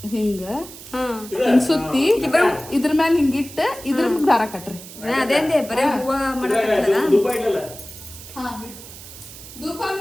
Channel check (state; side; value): noise; right; hiss, 15 dB below the sound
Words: ಹಿಂಗ ಹಾ ಹಿಂಗ್ ಸುತ್ತಿ ಇದ್ರ ಮ್ಯಾಲ ಹಿಂಗಿಟ್ಟ ಇದ್ರ ದಾರ ಕಟ್ರಿ ಅದೇಂದೆ ಬರೇ ಹೂವ ಮಾಡಕತ್ತಲ್ಲ ಧೂಪ ಇಡಲ್ಲ. ಹಾ ಧೂಪ